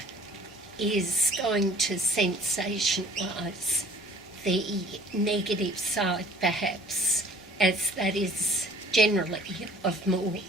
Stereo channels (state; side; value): normal; both; correlation 0.53